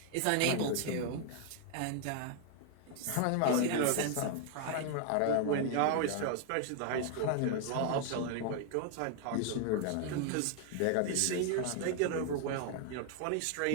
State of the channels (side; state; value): both; different; correlation 0.00